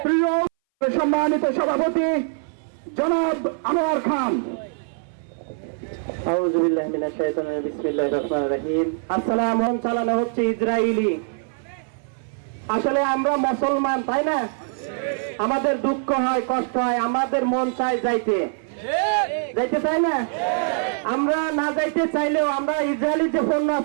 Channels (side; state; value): left; silent; 61 dB below the other